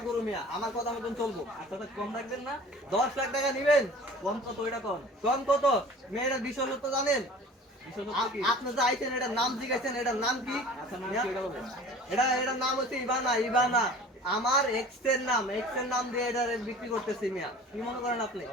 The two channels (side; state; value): both; normal; correlation 0.44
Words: গরু মিয়া আমার কথা মতন চলবো আপনারা কম রাখবেন না 10 লাখ টাকা নিবেন কম কত এটা কম কত মেয়েরা বিষয় তো জানেন আপনি যে আইছেন এটার নাম জিজ্ঞাসেন এটার নাম কি এটার নাম হচ্ছে ইবানা আমার এক্স এর নাম দিয়ে এটা বিক্রি করতেছি মিয়া কি মনে করেন আপনি